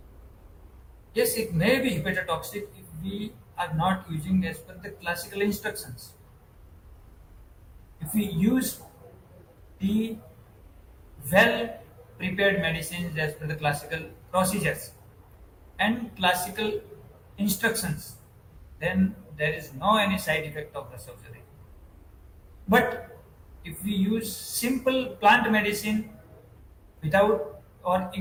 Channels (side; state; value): both; identical; correlation 1.00